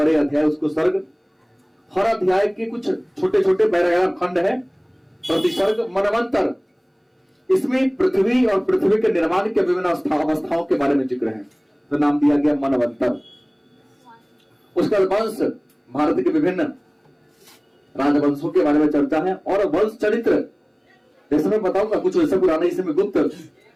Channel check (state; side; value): identical; both; correlation 1.00